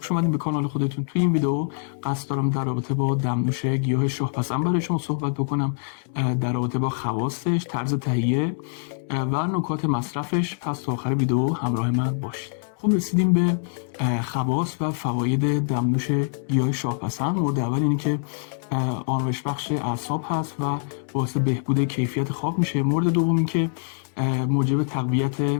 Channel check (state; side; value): silent; right; 62 dB below the other